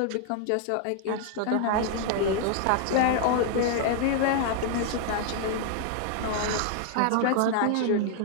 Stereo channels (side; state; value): both; different; correlation 0.00